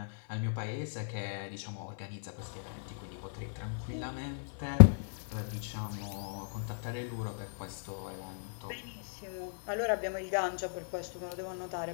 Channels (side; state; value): right; silent; 54 dB below the other